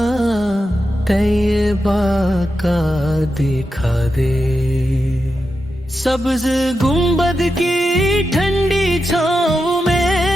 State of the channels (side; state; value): both; normal; correlation 0.89